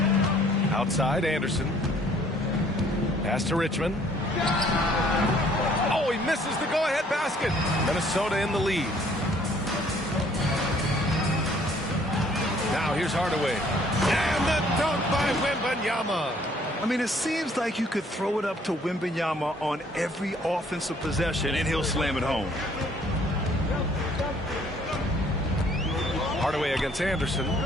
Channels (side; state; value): both; normal; correlation 0.60